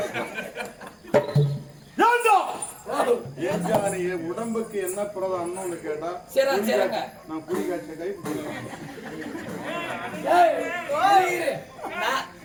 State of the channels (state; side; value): identical; both; correlation 1.00